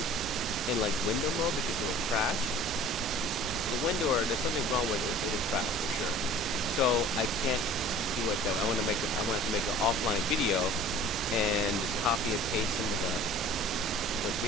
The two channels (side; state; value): both; normal; correlation 0.46